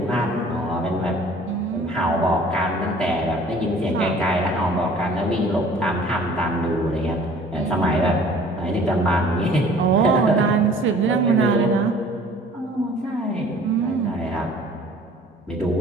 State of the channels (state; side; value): normal; both; correlation 0.50